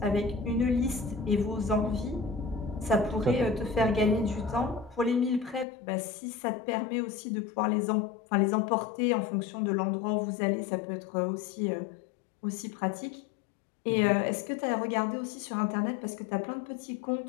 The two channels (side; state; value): right; drops out; at 5.7 s